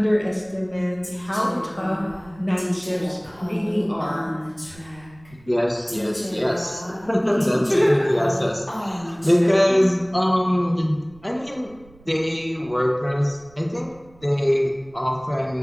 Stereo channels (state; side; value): noise; right; rumble, 26 dB below the sound